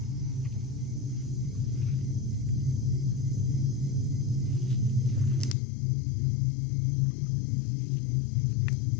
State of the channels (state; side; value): drops out; right; at 5.6 s